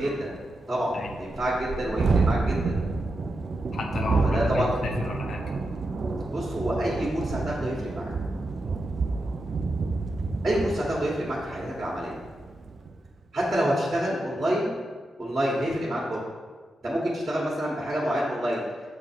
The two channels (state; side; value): normal; both; correlation 0.88